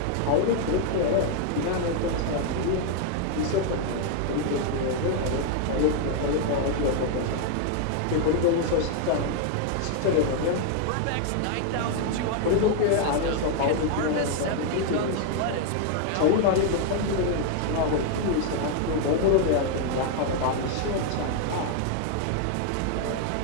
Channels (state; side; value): different; both; correlation 0.00